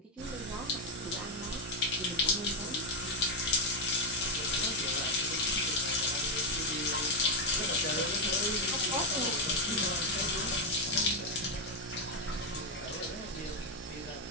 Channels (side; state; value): both; normal; correlation 0.04